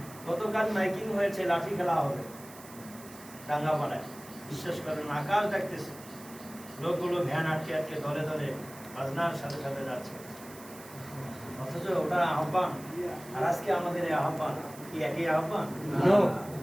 গতকাল মাইকিং হয়েছে, লাঠি খেলা হবে ডাঙ্গাপাড়ায়। বিশ্বাস করেন, আকাশ দেখতেছে, লোকগুলো ভ্যান আটকে আটকে ধরে ধরে বাজনার সাথে সাথে যাচ্ছে, অথচ ওটা আহ্বান। আর আজকে আমাদের এই আহ্বান কি একই আহ্বান?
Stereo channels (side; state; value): right; noise; hiss, 18 dB below the sound